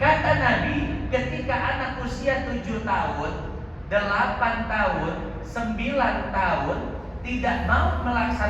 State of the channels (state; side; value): identical; both; correlation 1.00